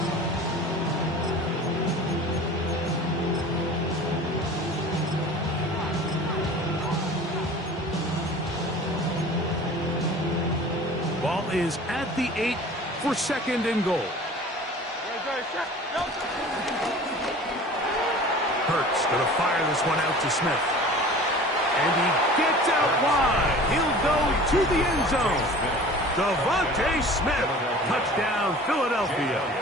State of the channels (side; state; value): both; normal; correlation 0.42